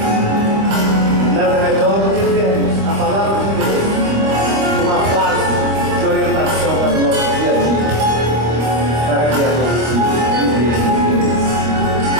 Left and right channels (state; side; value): late; left; 25 ms